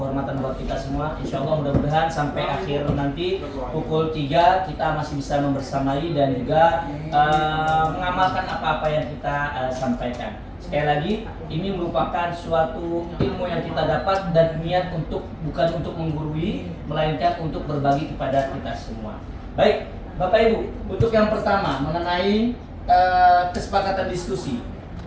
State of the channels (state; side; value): identical; both; correlation 1.00